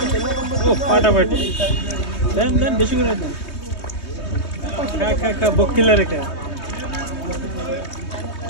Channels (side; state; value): right; late; 3.2 ms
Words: ও ফাটাফাটি দেন দেন বেশি করে দেন। খা বকিলা রেখে